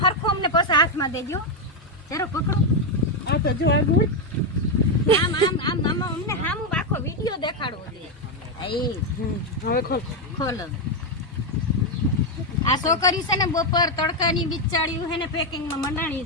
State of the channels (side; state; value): both; normal; correlation 0.05